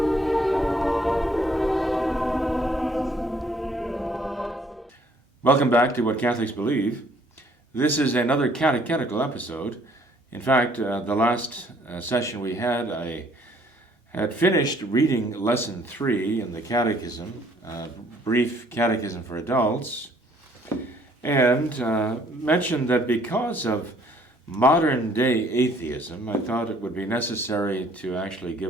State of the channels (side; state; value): both; normal; correlation 0.62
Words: Welcome back to What Catholics Believe. This is another catechetical episode. In fact, the last session we had, I had finished reading Lesson 3 in the Catechism, Brief Catechism for Adults, and mentioned that because of modern-day atheism, I thought it would be necessary to actually